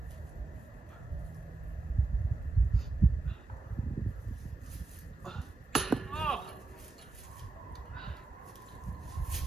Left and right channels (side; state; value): left; quieter; 3.5 dB